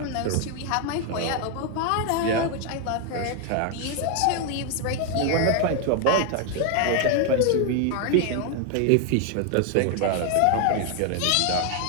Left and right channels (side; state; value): both; different; correlation 0.01